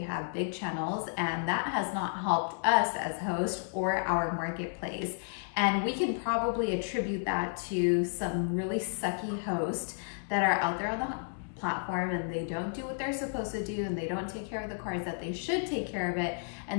big channels, and that has not helped us as hosts or our marketplace. And we can probably attribute that to some really sucky hosts that are out there on the platform, and they don't do what they're supposed to do, and they don't take care of the cars that they should take care of it,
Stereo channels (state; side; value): silent; right; digital silence